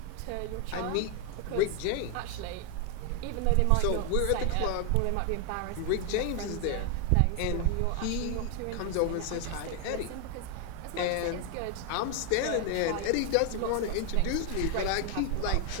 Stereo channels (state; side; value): different; both; correlation 0.01